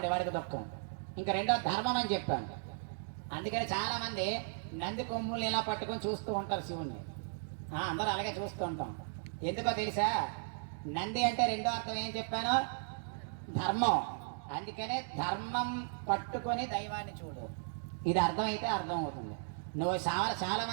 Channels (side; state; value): left; silent; digital silence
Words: వాడికి దుఃఖం. ఇంకా రెండో ధర్మం అని చెప్పాను. అందుకని చాలా మంది నంది కొమ్ముల్ని ఇలా పట్టుకొని చూస్తూ ఉంటారు శివుణ్ణి. అందరూ అలాగే చూస్తూ ఉంటాం. ఎందుకో తెలుసా? నంది అంటే రెండో అర్థం ఏం చెప్పాను? ధర్మం. అందుకనే ధర్మం పట్టుకొని దైవాన్ని చూడు. ఇది అర్థమైతే అర్థం అవుతుంది. నువ్వు చాలా